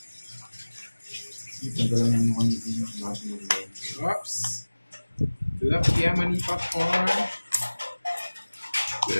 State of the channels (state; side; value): inverted; both; correlation -1.00